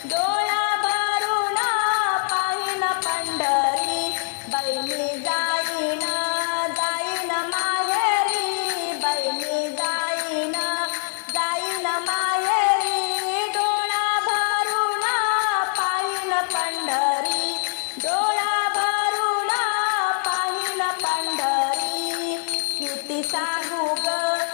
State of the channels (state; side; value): silent; right; 63 dB below the other